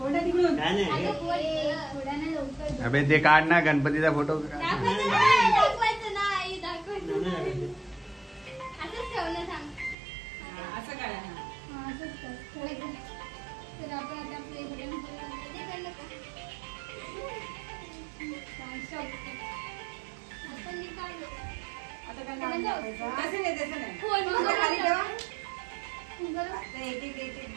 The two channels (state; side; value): drops out; left; at 10.0 s